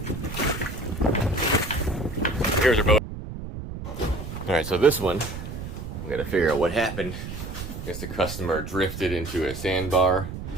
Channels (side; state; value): right; noise; rumble, 8 dB below the sound